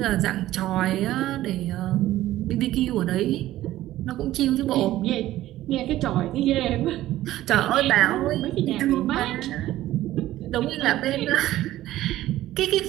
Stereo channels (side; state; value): left; quieter; 14.8 dB